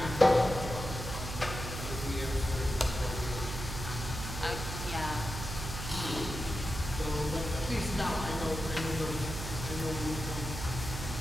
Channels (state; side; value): noise; right; hum, 6 dB below the sound